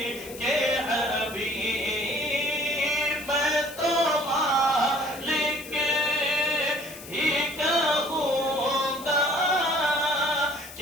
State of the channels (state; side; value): noise; left; hiss, 15 dB below the sound